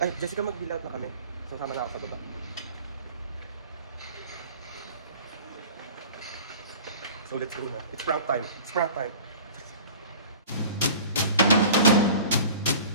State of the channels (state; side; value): inverted; both; correlation -0.42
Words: Ay, Jessica, mag-bill out na kami. Sasama na ako sa baba. So let's go na. It's prank time. It's prank time.